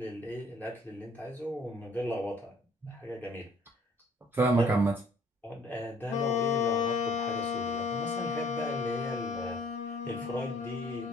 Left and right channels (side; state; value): both; normal; correlation 0.58